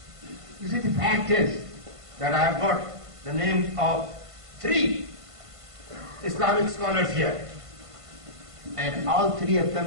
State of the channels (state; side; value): late; left; 1.5 ms